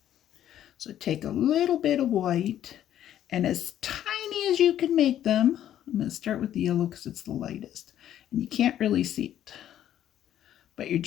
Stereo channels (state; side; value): quieter; right; 11.3 dB